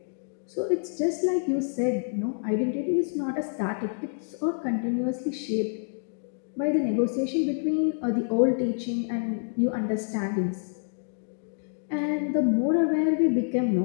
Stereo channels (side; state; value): right; silent; digital silence